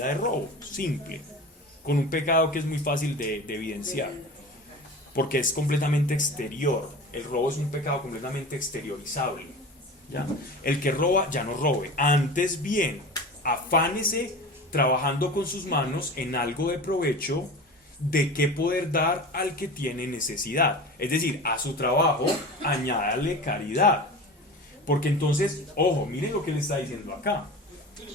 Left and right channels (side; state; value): both; normal; correlation 0.34